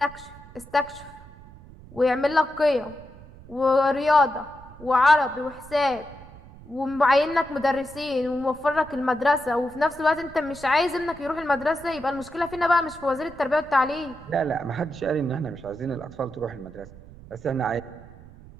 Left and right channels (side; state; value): right; noise; rumble, 19 dB below the sound